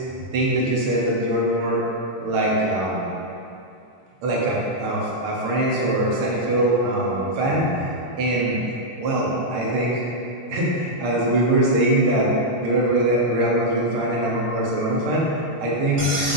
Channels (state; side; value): normal; both; correlation -0.04